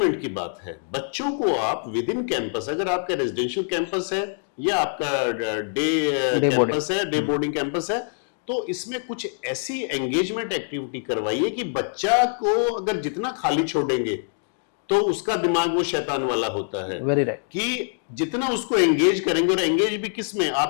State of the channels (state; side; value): silent; right; digital silence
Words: की बात है। बच्चों को आप विद इन कैंपस, अगर आपका रेजिडेंशियल कैंपस है या आपका डे कैंपस है, डे बोर्डिंग कैंपस है, तो इसमें कुछ ऐसी एंगेजमेंट एक्टिविटी करवाइए कि बच्चा को अगर जितना खाली छोड़ेंगे तो उसका दिमाग वो शैतान वाला होता है। कि जितना उसको एंगेज करेंगे, और एंगेज भी किस में,